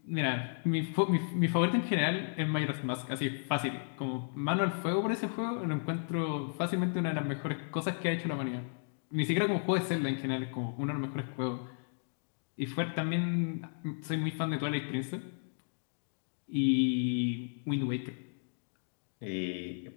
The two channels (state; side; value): silent; right; digital silence